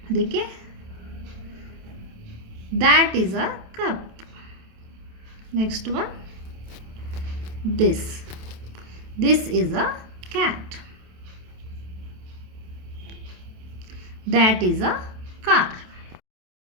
ಅದಕ್ಕೆ that is a cup. Next one, this is a cat. That is a car.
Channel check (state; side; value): late; left; 27 ms